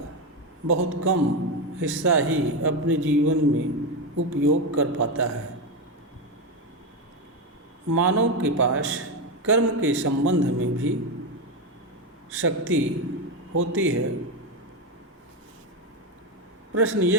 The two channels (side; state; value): both; normal; correlation 0.11